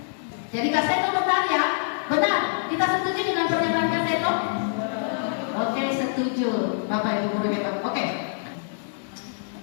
Jadi Kak Seto bertanya, benar? Kita setuju dengan pernyataan Kak Seto? Oke, setuju. Bapak Ibu guru hebat. Oke.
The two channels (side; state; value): right; silent; digital silence